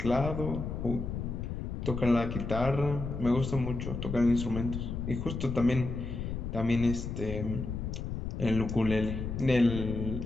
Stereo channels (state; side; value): noise; left; rumble, 4 dB below the sound